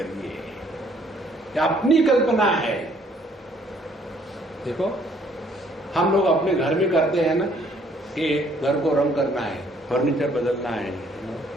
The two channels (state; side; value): normal; both; correlation 0.63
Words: है? अपनी कल्पना है। देखो, हम लोग अपने घर में करते हैं ना कि घर को रंग करना है, फर्नीचर बदलना है,